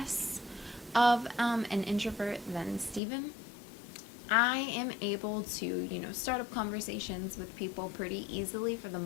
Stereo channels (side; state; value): right; drops out; at 3.0 s